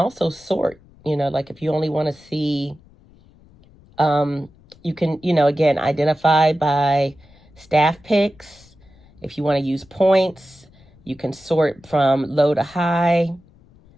sort, like if you only want to see, you can, again, identify by staff picks. If you want to use points, you can sort from low to high.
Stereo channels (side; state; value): left; noise; rumble, 27 dB below the sound